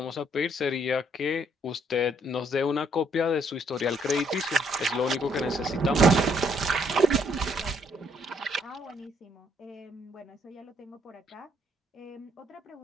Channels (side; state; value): both; normal; correlation 0.68